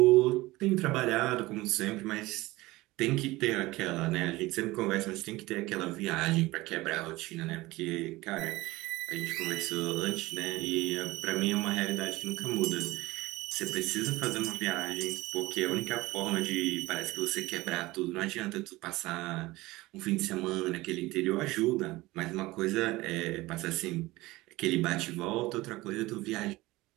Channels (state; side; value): quieter; left; 19.8 dB